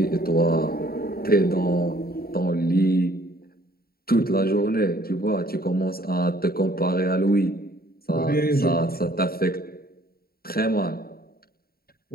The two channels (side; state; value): right; late; 0.44 ms